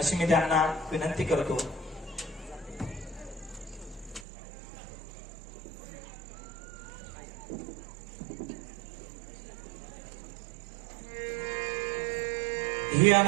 मी त्यांना विनंती करतो. ही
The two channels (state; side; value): drops out; left; at 4.2 s